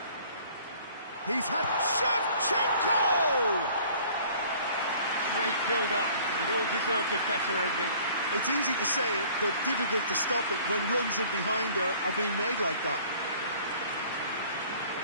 He's had Shevchenko! Great build-up. It all deserved a better ending. It's easy to say it, but difficult to stop it when runs in behind are being made like that.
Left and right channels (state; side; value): inverted; both; correlation -0.52